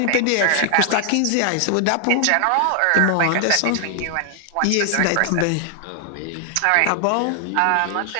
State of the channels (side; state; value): both; different; correlation 0.00